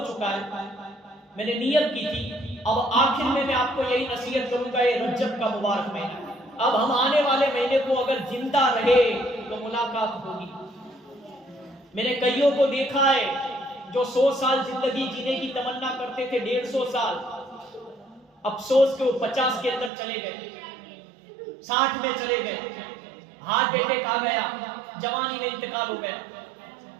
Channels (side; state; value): left; drops out; at 19.9 s